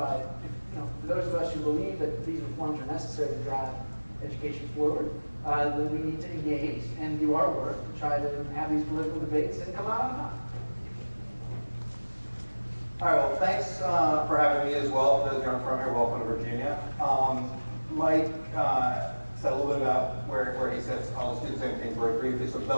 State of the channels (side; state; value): both; inverted; correlation -1.00